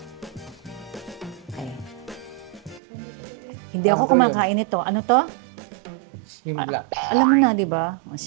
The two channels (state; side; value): drops out; left; at 2.8 s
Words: Okay. Hindi ako kumakain ito. Ano to? Simblock. Alam mo na, di ba? O,